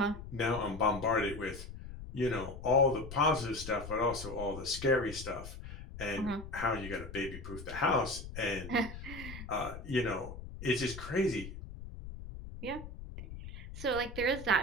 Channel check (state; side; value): noise; left; rumble, 11 dB below the sound